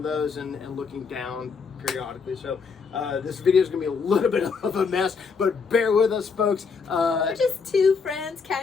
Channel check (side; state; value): right; quieter; 5.2 dB